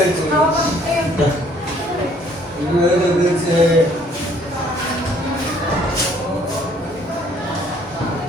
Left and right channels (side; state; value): both; normal; correlation 0.61